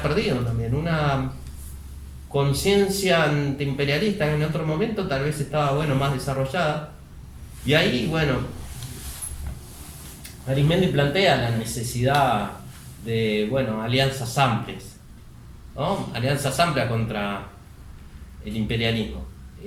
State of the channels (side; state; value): both; identical; correlation 1.00